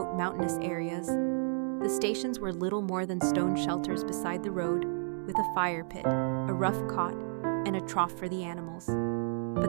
mountainous areas, the stations were little more than stone shelters beside the road, with a fire pit, a rough cot, and a trough for the animals.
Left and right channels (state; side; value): silent; left; 57 dB below the other